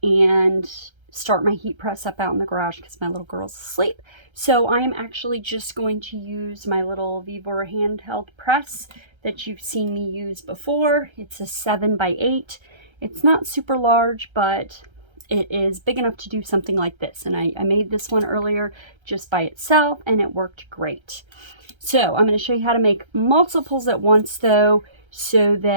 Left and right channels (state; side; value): late; left; 1.3 ms